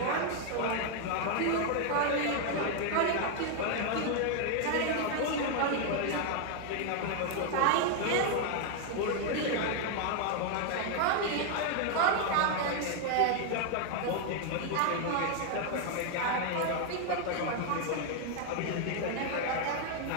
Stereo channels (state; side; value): different; both; correlation 0.00